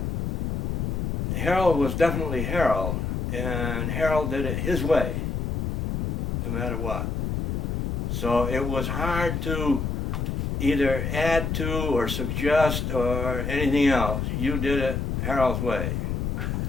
Harold was definitely Harold, and Harold did it his way, no matter what. So it was hard to either add to or suggest or anything else. You did it Harold's way.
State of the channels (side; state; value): left; noise; rumble, 1 dB below the sound